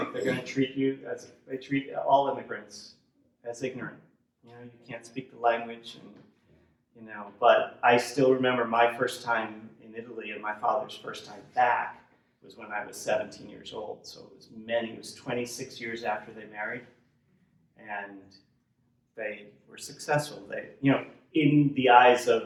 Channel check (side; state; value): both; identical; correlation 1.00